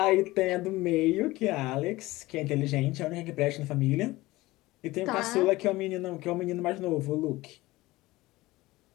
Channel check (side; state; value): right; quieter; 19.2 dB